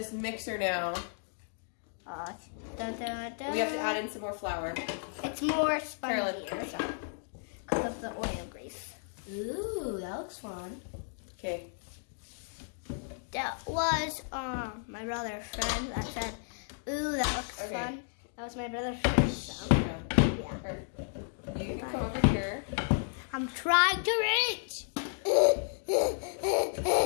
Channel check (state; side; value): silent; right; digital silence